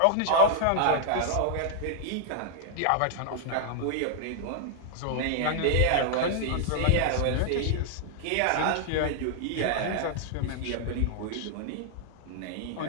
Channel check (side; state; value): both; different; correlation -0.01